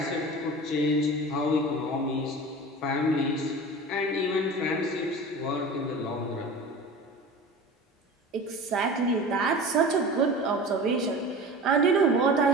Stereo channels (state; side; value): normal; both; correlation 0.35